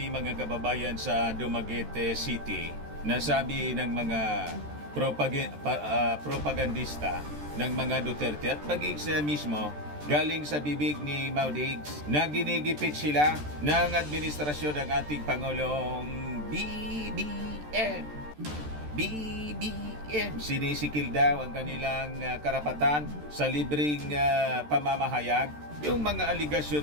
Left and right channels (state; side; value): late; left; 13 ms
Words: mga kababayan sa Dumaguete City, nasabi ng mga propagandista ng mga Duterte at maging siya mismo galing sa bibig ni Maudigs na ginigipit sila ng administrasyon ng ating Pangulong BBM. Sinisikil daw ang kanilang karapatan sa libreng pamamahayag. Yung mga